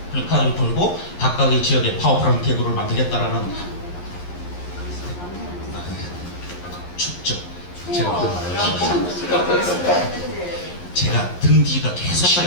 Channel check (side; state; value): right; late; 11 ms